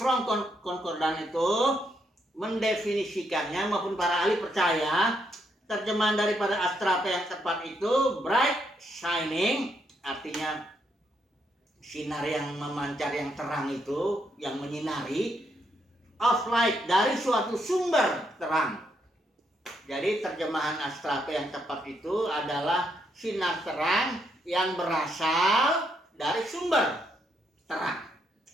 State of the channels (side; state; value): both; normal; correlation 0.76